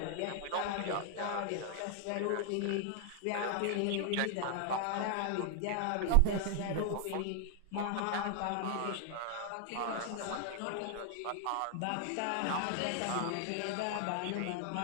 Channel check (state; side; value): different; both; correlation 0.00